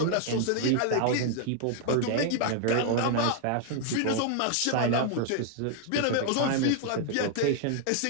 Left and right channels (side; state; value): both; different; correlation 0.00